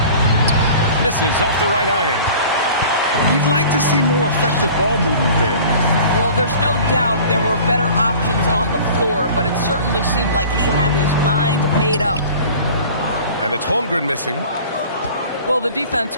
Misses off the right iron. You'd like to see more effective ball movement there. Well, there's no doubt there were better options on the floor, but it certainly seemed like he had his mind made up. And it's Holmgren missing. Well, the defense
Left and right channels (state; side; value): inverted; both; correlation -0.44